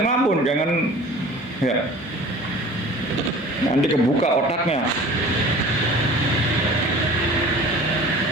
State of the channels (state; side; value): normal; both; correlation 0.43